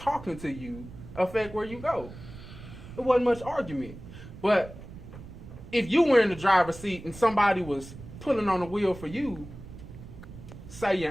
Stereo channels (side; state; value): right; noise; rumble, 15 dB below the sound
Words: to you affect where you go. It wasn't much argument. But if you were in the driver's seat and somebody was pulling on the wheel for you, say